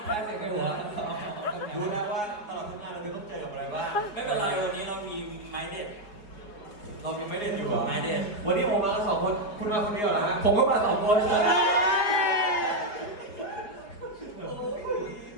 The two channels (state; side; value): late; right; 4.8 ms